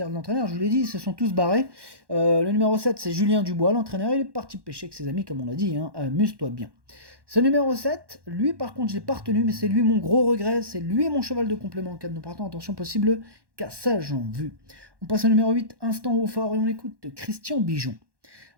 de l'entraîneur, je vous l'ai dit, ils se sont tous barrés. Le numéro 7, c'est Julien Dubois, l'entraîneur, il est parti pêcher avec ses amis, comme on l'a dit, amuse-toi bien. Ce numéro 7, lui par contre, je l'ai pas retenu, mais c'est lui mon gros regret, c'est lui mon cheval de complément en cas de non partant, attention possible, cassage en vue. On passe au numéro 8, Instant au fort, et on écoute Christian Bijon.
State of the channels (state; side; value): late; left; 1.1 ms